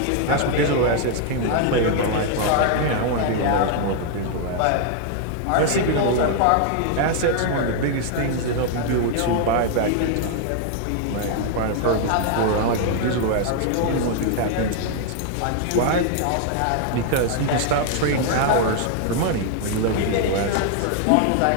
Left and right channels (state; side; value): different; both; correlation 0.00